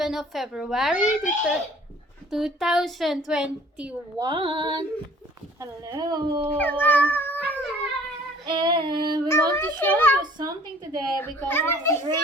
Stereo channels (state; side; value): normal; both; correlation 0.53